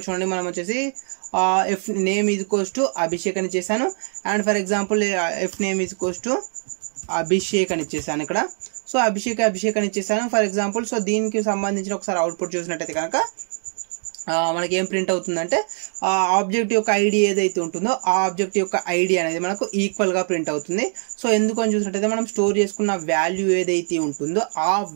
చూడండి, మనం వచ్చేసి ఎఫ్ నేమ్ ఈజ్ అభిషేక్ అని ఇచ్చేసాను and for example F name is Abhishek అని ఇచ్చేసాను ఇక్కడ. సో అభిషేక్ అని ఇచ్చేసాను ఫర్ ఎగ్జాంపుల్. సో దీనికి సంబంధించిన ఒకసారి అవుట్పుట్ చూసినట్టయితే కనుక మనకి ఏం ప్రింట్ అవుతుందంటే ఆ ఆబ్జెక్ట్ యొక్క ఐడి ఏదైతే ఉంటుందో ఆ ఆబ్జెక్ట్ యొక్క ఐడి అనేది మనకు ఈక్వల్గా ప్రింట్ అవుతుంది. సో ఎందుకని చూసినట్టయితే మనం స్టోర్ చేసుకున్న వాల్యూ ఏదైతే ఉంటుందో ఆ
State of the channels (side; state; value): left; silent; 60 dB below the other